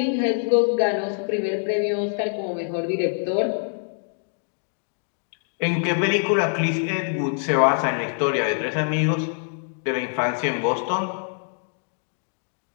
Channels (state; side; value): silent; right; digital silence